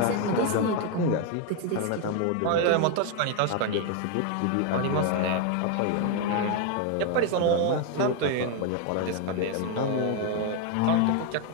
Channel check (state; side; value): different; both; correlation 0.01